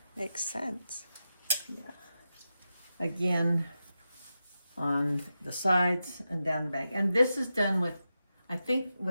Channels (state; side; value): inverted; both; correlation -0.90